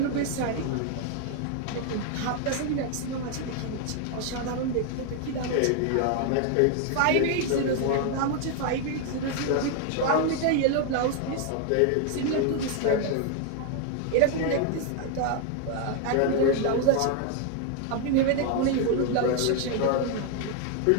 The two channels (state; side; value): different; both; correlation 0.00